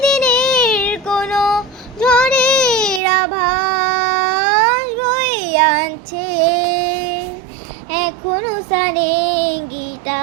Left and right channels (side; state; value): left; drops out; at 3.0 s